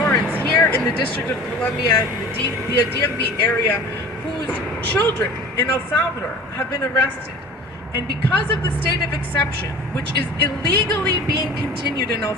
here in the District of Columbia, the DMV area, whose children in El Salvador have been arrested. And because of the state of exception, which is illegally being continued in El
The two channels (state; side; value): normal; both; correlation 0.41